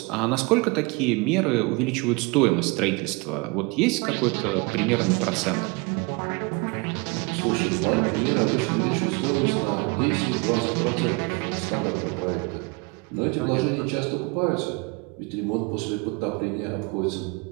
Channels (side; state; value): left; quieter; 28.1 dB